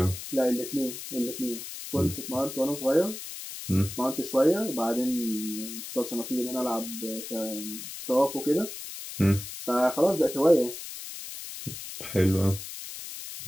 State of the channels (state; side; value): noise; left; hiss, 10 dB below the sound